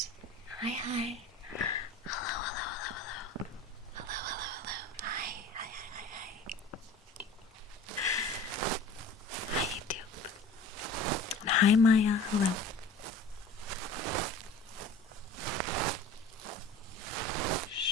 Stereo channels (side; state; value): both; normal; correlation 0.41